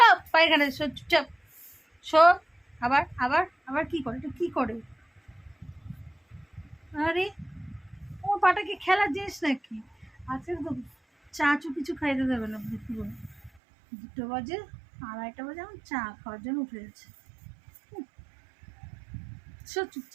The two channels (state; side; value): drops out; left; at 13.5 s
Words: পায়খানে, শো চুপচাপ, শো। আবার আবার আবার কি করে, এটা কি করে? আরে ও পাটা কি খেলার জিনিস নাকি? আজকে তো চা চু কিছু খাইতে দেবে না পুরো। 2টো বাজে, 2:30 বাজে, আমার চা খাওয়ার জন্য উঠে গেছে। শো